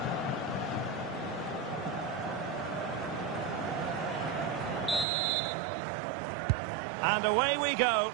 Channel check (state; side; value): drops out; left; at 5.1 s